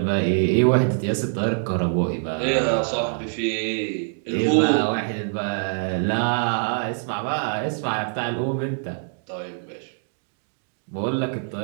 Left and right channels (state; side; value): silent; left; digital silence